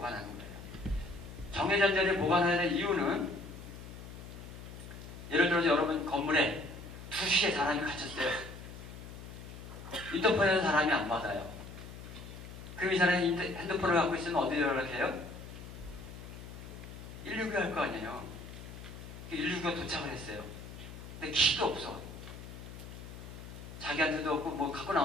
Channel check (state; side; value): noise; left; hum, 12 dB below the sound